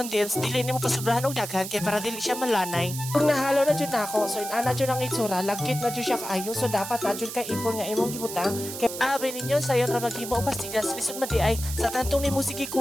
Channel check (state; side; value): noise; right; hiss, 8 dB below the sound